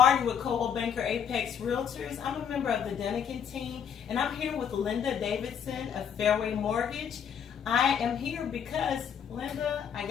with Coldwell Banker Apex Realtors. I'm a member of the Denikin team, and I'm here with Linda Davidson of Fairway Mortgage. I am here because, Linda, I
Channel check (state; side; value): quieter; right; 8.0 dB